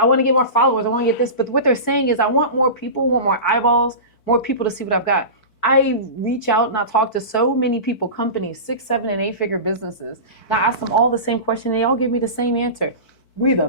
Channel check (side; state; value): right; late; 4.5 ms